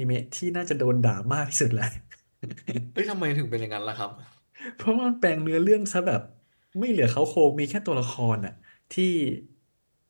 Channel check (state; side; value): inverted; both; correlation -1.00